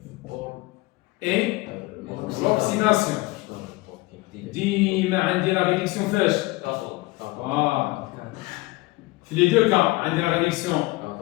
اي l'oxydation ديما عندي لا ريدكسيون فاش في لي دو كا عندي لا ريدكسيون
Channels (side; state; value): right; quieter; 21.5 dB